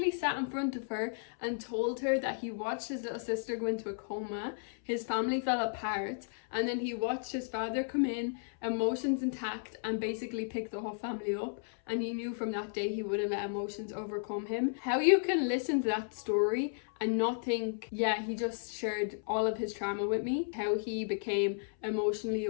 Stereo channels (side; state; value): right; silent; 55 dB below the other